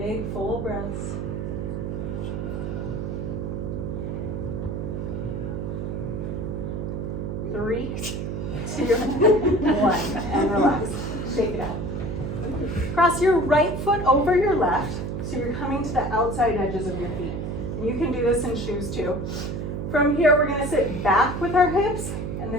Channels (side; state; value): right; noise; hum, 4 dB below the sound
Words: full breaths. 3, 2, 1, and relax. Shake it out. Cross your right foot over your left, so you're coming to the outside edges of your feet. And you can do this in shoes too. From here, we're gonna sit back with our hips and